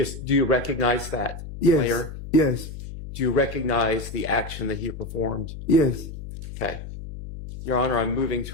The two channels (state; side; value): noise; left; hum, 10 dB below the sound